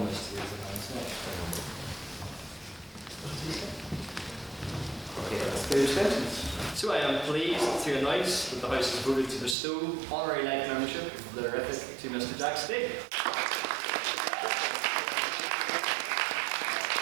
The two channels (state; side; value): drops out; left; at 9.6 s